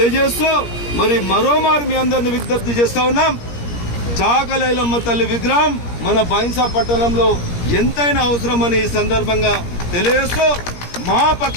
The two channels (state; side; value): late; right; 17 ms